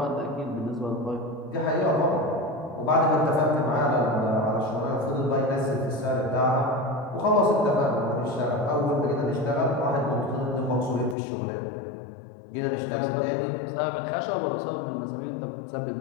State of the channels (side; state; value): right; drops out; at 11.2 s